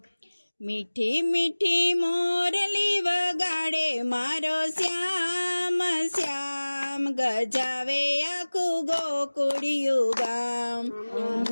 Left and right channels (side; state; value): both; inverted; correlation -1.00